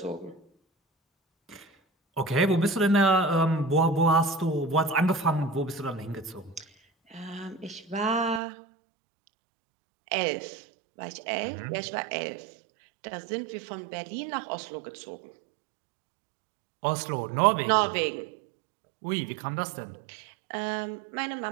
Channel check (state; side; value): drops out; left; at 8.4 s